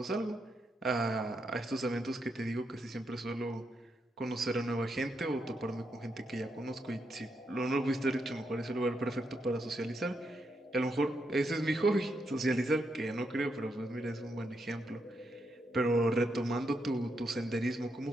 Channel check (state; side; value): normal; both; correlation 0.81